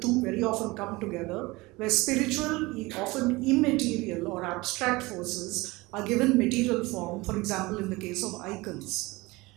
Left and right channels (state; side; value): quieter; left; 22.3 dB